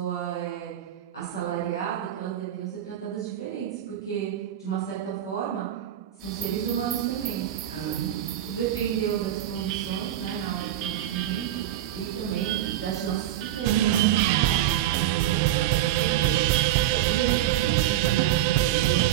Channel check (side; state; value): left; quieter; 12.4 dB